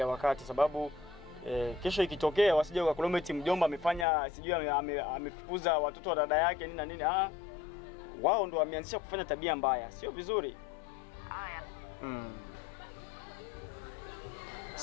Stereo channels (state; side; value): drops out; right; at 4.0 s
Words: wakati, sababu kesho ikitokea wasije wakakulometi mjomba amefanya sijui amefukuza watoto wa dada yake nini na nini. Wao ndo wameanzisha kufanya tabia mbaya, sio vizuri. Haya.